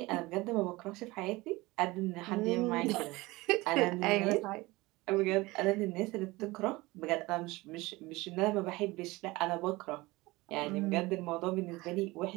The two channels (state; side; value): quieter; left; 21.4 dB